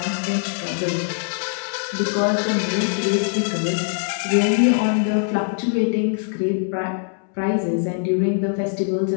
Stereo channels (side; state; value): right; silent; 64 dB below the other